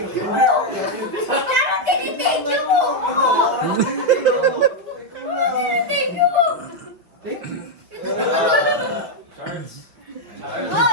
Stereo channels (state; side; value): late; left; 5.9 ms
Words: Parang tinitake niyo mo. Thank you po.